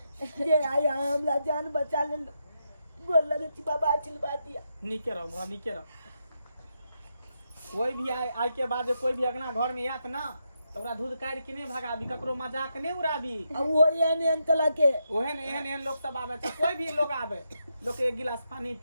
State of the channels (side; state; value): both; inverted; correlation -0.83